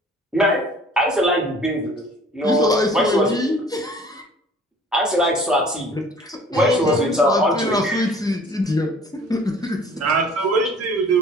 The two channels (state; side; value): normal; both; correlation 0.50